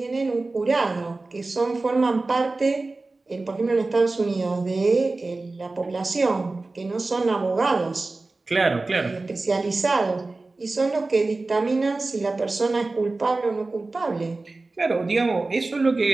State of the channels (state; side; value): quieter; left; 3.3 dB